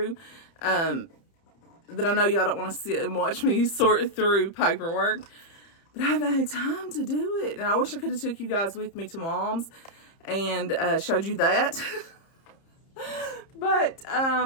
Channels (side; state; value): right; late; 30 ms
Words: that I know y'all don't want to sit and watch me sort through paperwork, but I haven't had time to do it. And I wish I could have took you guys with me to Mom's and showed you that. But